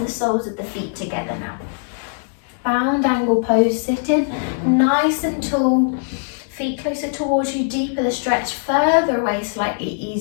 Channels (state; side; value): silent; right; digital silence